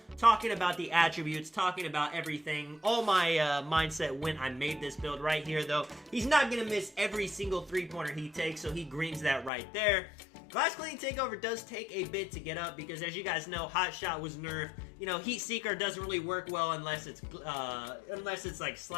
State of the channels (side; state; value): right; drops out; at 9.5 s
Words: talking about the attributes, talking about everything, all my mindset when I made this build right here, though. He's not going to miss every single 3-pointer he takes, so he greens that right there. Glass cleaning takeover does take a bit to get up because, as you guys know, hot shot was nerfed. Heat seeker doesn't really work well unless it's like